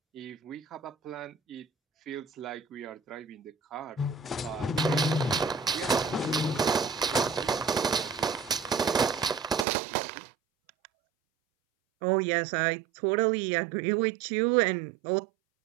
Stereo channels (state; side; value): drops out; left; at 9.7 s